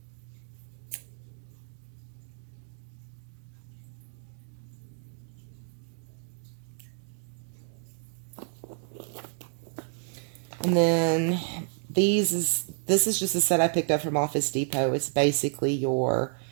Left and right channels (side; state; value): left; silent; 58 dB below the other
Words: And then this is just a set I picked up from Office Depot. It's basically your